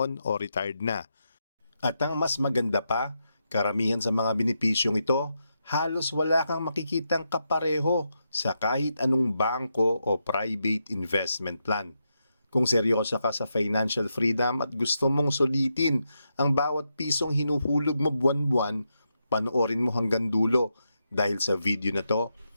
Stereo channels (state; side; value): inverted; both; correlation -0.84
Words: o retired na. At ang mas maganda pa, karamihan sa mga benepisyong ito, halos wala kang makikitang kapareho sa kahit anong bangko o private investment plan. Kung seryoso ka sa financial freedom at gusto mong sulitin ang bawat pisong hinuhulog mo buwan-buwan, panoorin mo hanggang dulo dahil sa video na to,